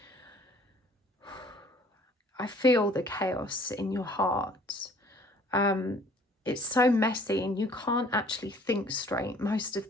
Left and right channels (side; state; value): both; normal; correlation 0.55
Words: feel the chaos in your heart. It's so messy and you can't actually think straight most of